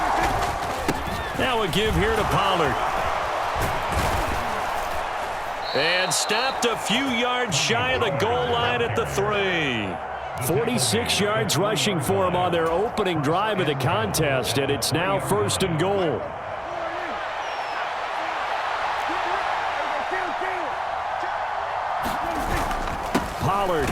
Now a give here to Pollard. And stopped a few yards shy of the goal line at the 3. 46 yards rushing for him on their opening drive of the contest, and it's now 1st and goal. Pollard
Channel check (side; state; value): both; identical; correlation 1.00